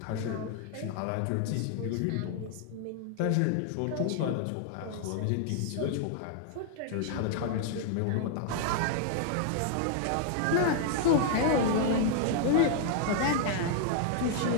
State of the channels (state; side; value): different; both; correlation -0.01